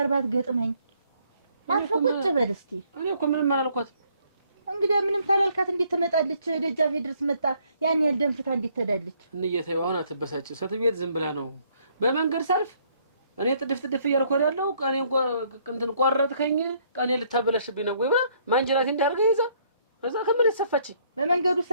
ባትገጥመኝ አርፈህ ቁጭ በል እስኪ እኔ እኮ ምንም አላልኳትም እንግዲህ ምንም ታላልካት እንዴት ትመጣለች ደጃፌ ድረስ መጣ ያን ያህል ደንፍታ እንዴት ትሄዳለች እንየተው አሁን አትበሳጭ ሰትቤት ዝም ብላ ነው በመንገድ ሰልፍ እኔ ጥድፍ እያልኩ ያለው ቀኔ እንትን ቆረጥከኝ ቀኔ ልታበላሽብኝ ነው ወይ ብላ ማንጀራቴ እንዳርገ ይዛ ከዛ ከምን ተሰፋች በመንገዱ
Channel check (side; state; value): both; inverted; correlation -0.66